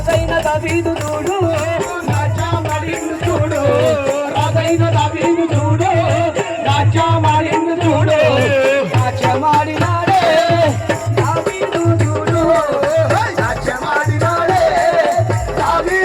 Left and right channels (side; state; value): both; identical; correlation 1.00